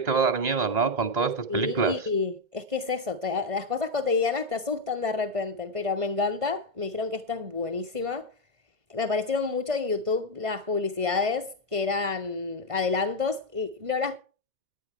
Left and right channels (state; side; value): late; left; 1.5 ms